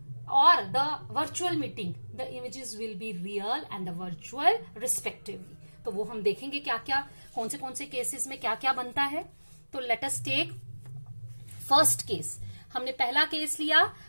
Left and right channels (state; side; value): inverted; both; correlation -1.00